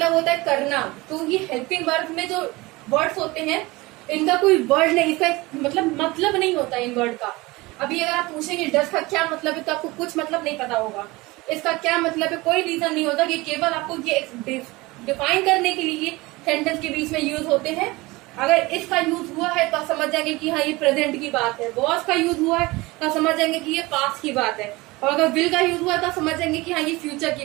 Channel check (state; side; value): quieter; left; 22.0 dB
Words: होता है करना. तो ये हेल्पिंग वर्ब में जो वर्ड्स होते हैं इनका कोई वर्ड नहीं, इसका मतलब नहीं होता इन वर्ड का. अभी अगर आप पूछेंगे डज का क्या मतलब है तो आपको कुछ मतलब नहीं पता होगा. इसका क्या मतलब है कोई रीजन नहीं होता. कि केवल आपको ये डिफाइन करने के लिए सेंटेंस के बीच में यूज होते हैं अगर इसका यूज हुआ है तो समझ जाएंगे कि हाँ ये प्रेजेंट की बात है, वॉज का यूज हुआ है तो समझ जाएंगे कि ये पास्ट की बात है, और अगर विल का यूज हुआ तो समझ जाएंगे कि हाँ ये फ्यूचर की